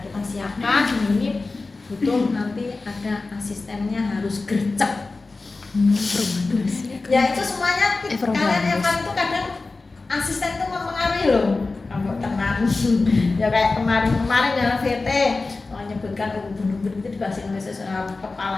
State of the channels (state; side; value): quieter; right; 3.6 dB